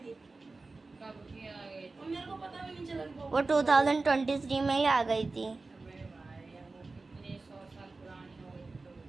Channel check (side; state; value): left; quieter; 3.6 dB